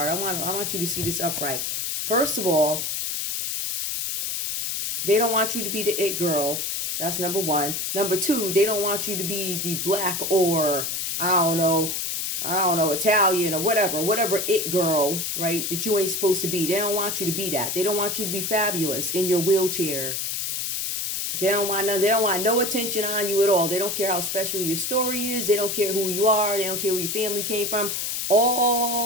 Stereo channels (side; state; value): left; noise; hiss, 2 dB below the sound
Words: I want you to see this upright. First of all, they don't want you to be the it girl. That's number one. Number two, they don't want you to be the black or I don't know, Italian or whatever it girl, right? That you ain't supposed to be. They don't want you to be that. They don't want you to be fabulous in your wheelchair. They don't want no attention on you at all. They don't care how special your story is. They don't care who you are. They don't care where your family came from.